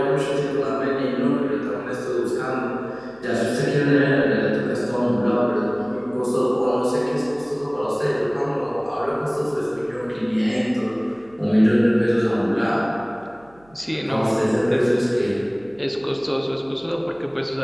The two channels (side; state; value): right; noise; hum, 29 dB below the sound